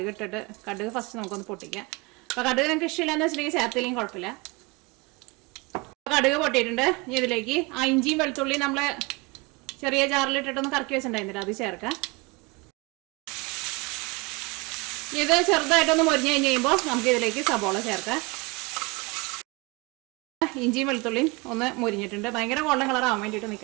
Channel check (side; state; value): left; quieter; 26.2 dB